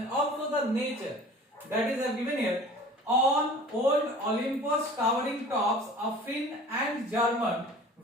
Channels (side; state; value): both; normal; correlation 0.44